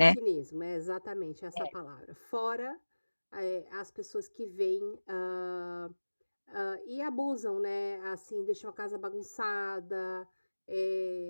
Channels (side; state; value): both; inverted; correlation -1.00